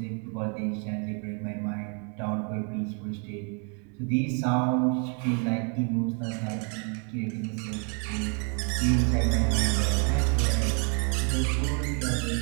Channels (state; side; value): quieter; left; 38.8 dB